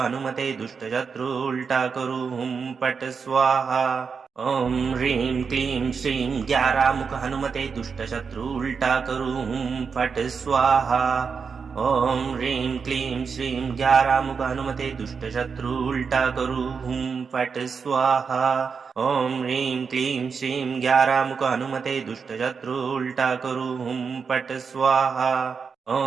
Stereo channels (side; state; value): left; quieter; 5.7 dB